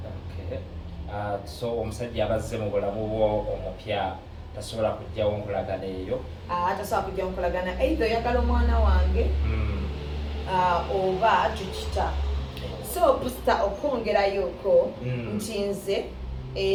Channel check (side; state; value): both; identical; correlation 1.00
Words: So omusajja abazze mu bulamu bwo omupya tasobola kujjawo nkolagana eyo? Tasobola kujjawo nkolagana either oyagala omwana wange oba tukita. So pasita okwongerayoko nti nze